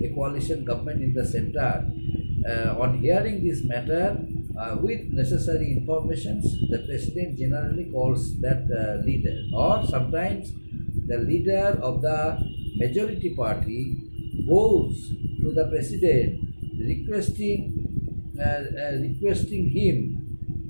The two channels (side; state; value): both; inverted; correlation -1.00